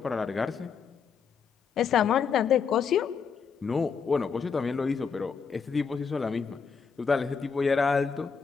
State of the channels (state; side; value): quieter; right; 6.1 dB